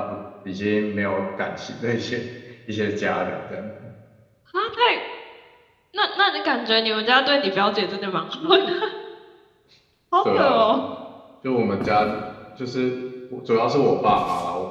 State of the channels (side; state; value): both; identical; correlation 1.00